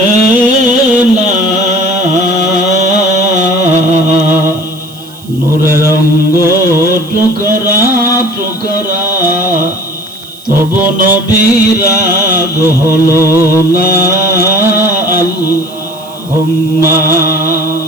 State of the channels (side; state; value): right; noise; hiss, 23 dB below the sound